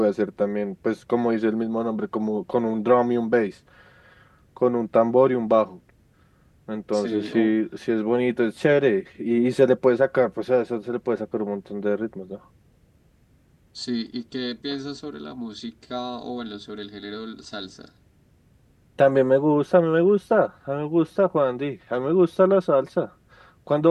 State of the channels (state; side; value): identical; both; correlation 1.00